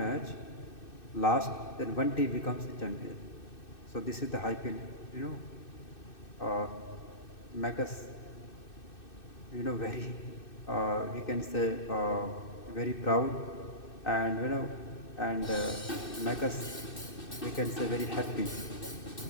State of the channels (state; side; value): late; right; 2.6 ms